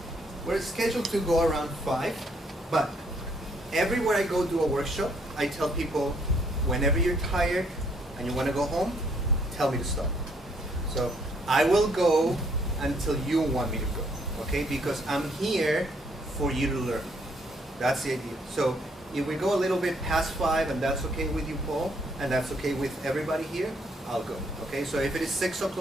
we're scheduled to go around 5, but everywhere I go do a workshop, I tell people, whenever you're tired and you want to go home, tell me to stop. So I will go until you want me to go, okay? Because I'm here for you to learn. That's the idea. So if we go a little bit past 5, and that's okay with you, Paul, and that's okay with everybody here, I'll go, okay? So if it is 6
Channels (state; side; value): normal; both; correlation 0.68